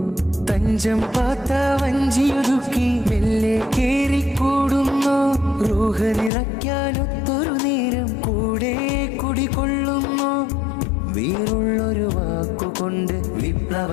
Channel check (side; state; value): right; drops out; at 6.3 s